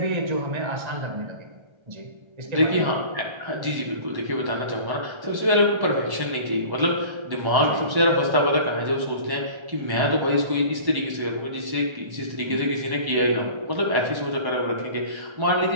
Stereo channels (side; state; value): left; late; 1.3 ms